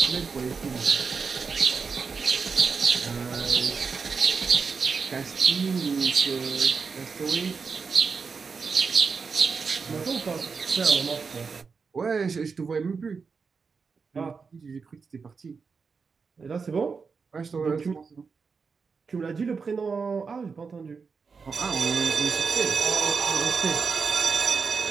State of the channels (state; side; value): quieter; left; 5.2 dB